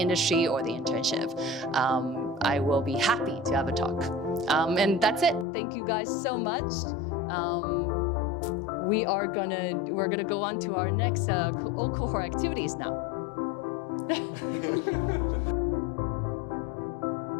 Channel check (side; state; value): right; drops out; at 5.5 s